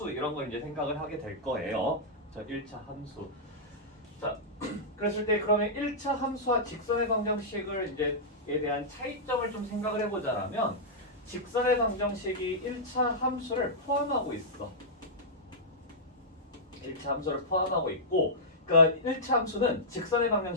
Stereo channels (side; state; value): both; normal; correlation -0.11